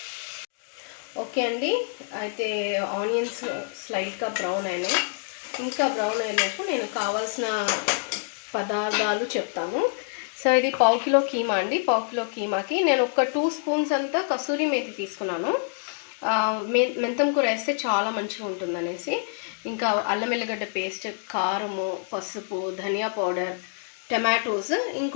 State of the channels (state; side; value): silent; right; digital silence